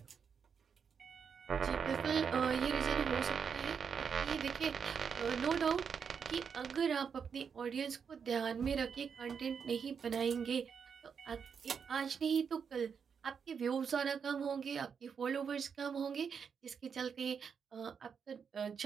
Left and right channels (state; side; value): quieter; left; 6.6 dB